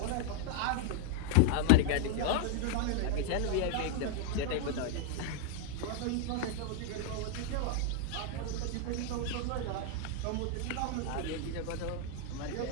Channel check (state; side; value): different; both; correlation 0.00